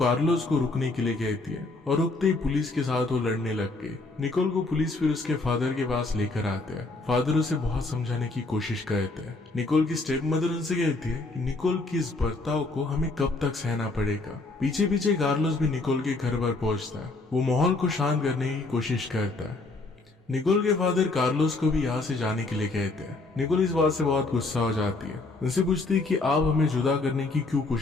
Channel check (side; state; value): right; quieter; 3.3 dB